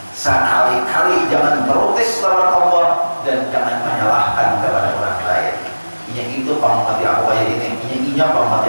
Sekali-kali jangan protes lawan Allah dan jangan menyalahkan kepada orang lain. Ini itu pamati aku kayak ini, pamati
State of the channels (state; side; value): inverted; both; correlation -1.00